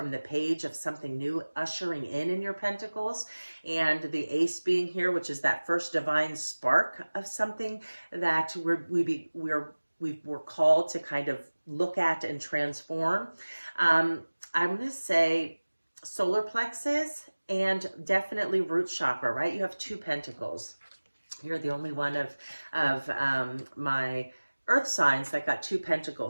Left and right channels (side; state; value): both; inverted; correlation -1.00